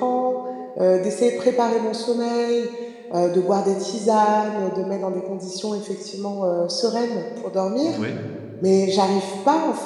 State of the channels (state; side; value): identical; both; correlation 1.00